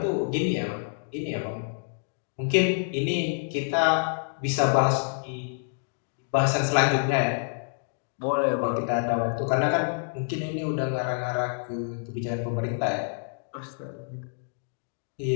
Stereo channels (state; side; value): silent; right; digital silence